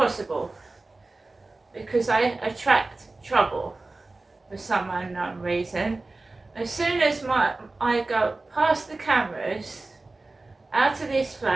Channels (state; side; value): quieter; left; 3.2 dB